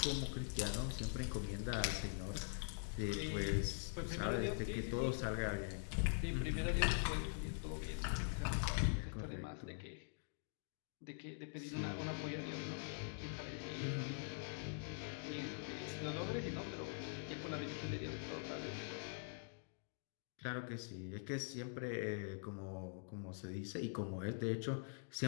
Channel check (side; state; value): right; silent; digital silence